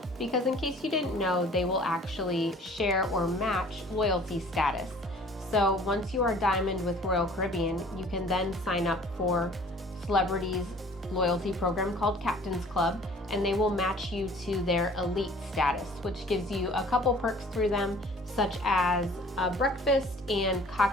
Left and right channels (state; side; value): normal; both; correlation 0.51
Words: because in case you didn't know, they will actually share or match loyalty status. So once you are diamond with Royal Caribbean, you can then sign up for Celebrity's loyalty program called Captain's Club, and they will match you to their elite status, which gives you a couple perks through them, such as breakfast and